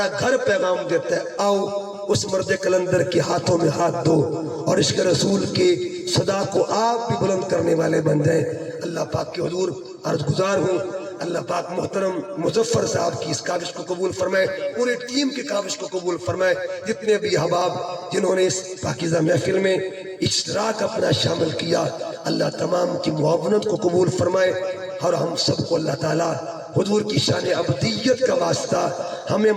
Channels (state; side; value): identical; both; correlation 1.00